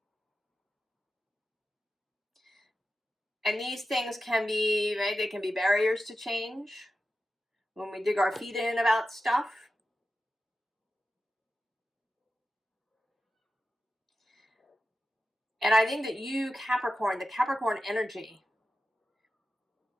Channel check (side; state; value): both; normal; correlation 0.92